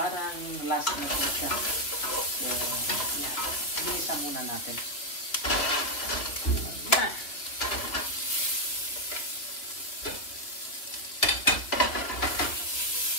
last na po siya. So, yan. Bilisan muna natin. Yan.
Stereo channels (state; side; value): late; right; 2.8 ms